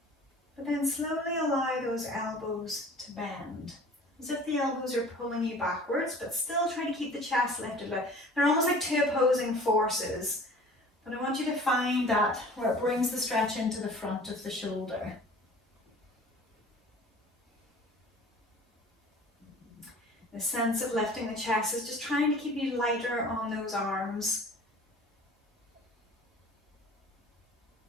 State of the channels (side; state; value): both; normal; correlation 0.46